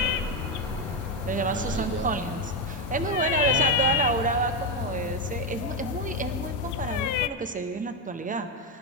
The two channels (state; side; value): normal; both; correlation 0.08